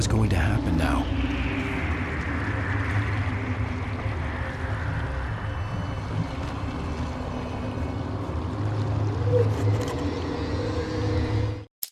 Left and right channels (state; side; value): identical; both; correlation 1.00